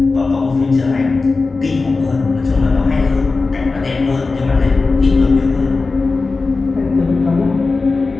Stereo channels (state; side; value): quieter; right; 3.9 dB